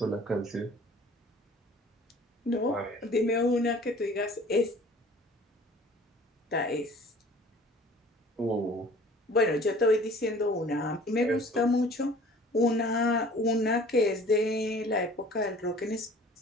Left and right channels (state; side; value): normal; both; correlation 0.49